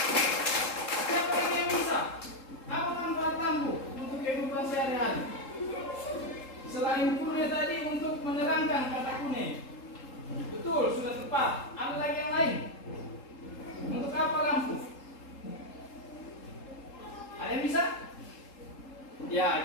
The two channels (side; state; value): right; late; 3.7 ms